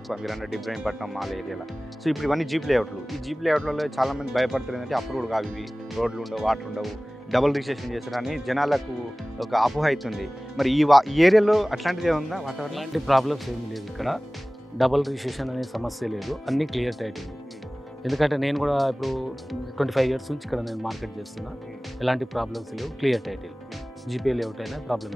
మీరు అన్నట్టు ఇబ్రాహీంపట్నం మాల్ ఏరియాలో. సో ఇప్పుడు ఇవన్నీ జీప్ లేఅవుట్లు. ఈ జీప్ లేఅవుట్లలో చాలామంది భయపడుతుంది ఏంటంటే అప్రూవ్డ్ కావు, ఇవి రోడ్లు ఉండవు, వాటర్ ఉండవు, డబుల్ రిజిస్ట్రేషన్ చేస్తారని జనాలకు ఒక అపోహ అవుతుంది. మరి ఈ ఏరియాలో అట్లాంటిది ఏముందా వాతావరణం? అలాంటి ప్రాబ్లమ్స్ ఏమీ లేదు. ఇక్కడ డబుల్ రిజిస్ట్రేషన్ అనే సమస్య లేదు, అన్నీ క్లియర్ టైటిల్. ఎందుకంటే నేను కూడా ఇప్పుడు 25 ఇయర్స్ నుంచి ఇక్కడ నేను మార్కెట్ చేస్తున్నా. ఎలాంటి ప్రాబ్లమ్స్ లేవు, క్లియర్ టైటిల్. జీపే లేఅవుట్ అయినా ప్రాబ్లం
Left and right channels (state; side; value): normal; both; correlation 0.98